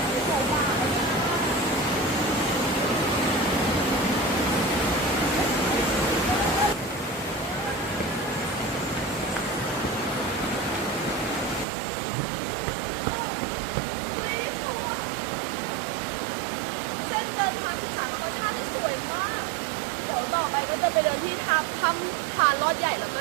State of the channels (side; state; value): left; drops out; at 11.7 s